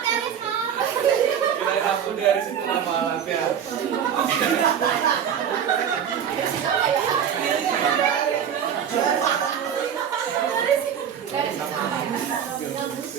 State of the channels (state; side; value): quieter; left; 8.5 dB